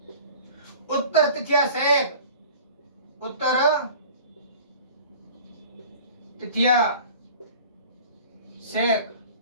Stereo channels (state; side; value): inverted; both; correlation -0.44